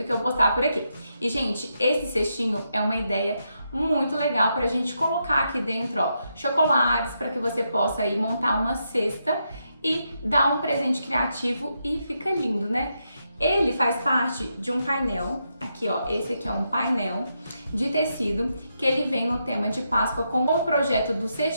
que eu postar por aqui. E, gente, esse cestinho é uma ideia muito legal para a gente colocar aqui dentro, ó, chocolates, para que você possa aí montar uma cesta e dar um presente criativo e fica lindo, né? Ele faz parte de um painel, aqui ó, esse aqui é um painel de tecido que ele vem no tema de Páscoa com o projeto dos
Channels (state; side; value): inverted; both; correlation -0.82